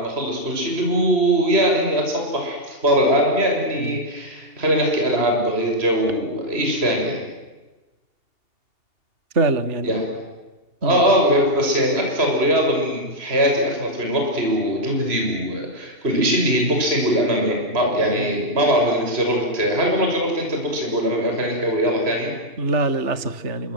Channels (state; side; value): late; left; 2.7 ms